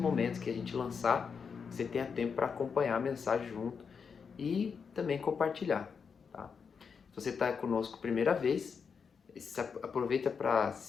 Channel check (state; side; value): quieter; right; 6.0 dB